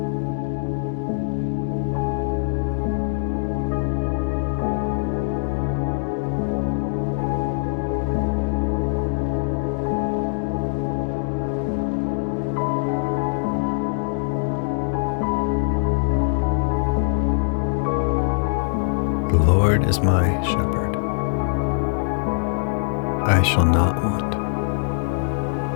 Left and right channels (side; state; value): right; silent; digital silence